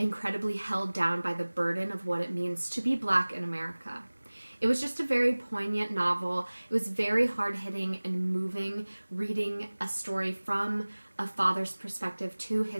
held down by the burden of what it means to be Black in America. It was just a very poignant novel. It was very hard-hitting and moving, reading a story from a father's perspective to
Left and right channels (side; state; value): both; inverted; correlation -1.00